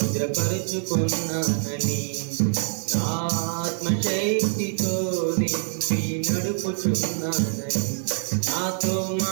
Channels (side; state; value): left; silent; 60 dB below the other